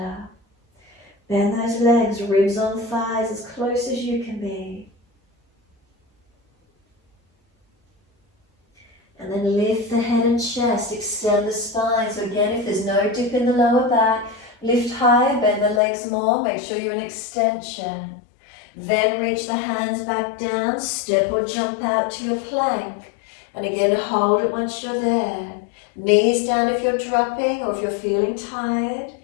Bend those legs, ribs on thighs, as close as you can be. And then lift the head and chest, extend the spine. So again, if there's no dip in the lower back, lift higher, bend the legs more, make sure you're in extension. Then reach the hands back down, step or jump out to your plank. And again, hold it once you're there. Knees down if you're dropping or if you're feeling tired.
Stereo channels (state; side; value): drops out; right; at 15.8 s